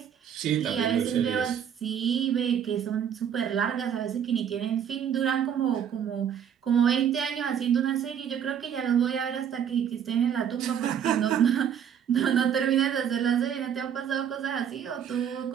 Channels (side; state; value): left; quieter; 8.7 dB